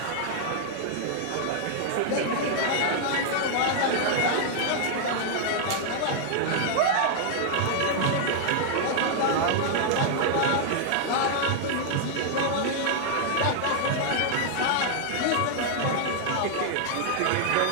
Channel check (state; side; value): different; both; correlation 0.00